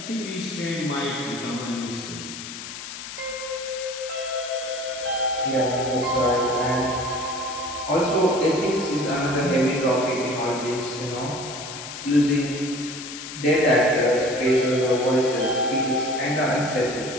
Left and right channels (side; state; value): left; noise; hiss, 10 dB below the sound